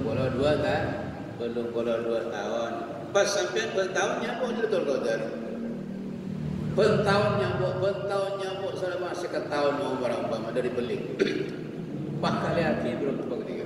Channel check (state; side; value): identical; both; correlation 1.00